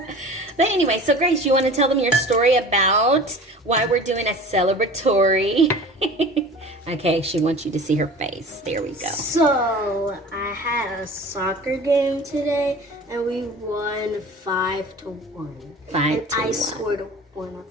But anyway, so Grace, you want to tell them your story about why we're doing a celebratory? Okay, she wants you to see her face. There we go. So I had a soccer game today, and we won 5-1. 5-1. I scored one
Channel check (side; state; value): both; normal; correlation 0.40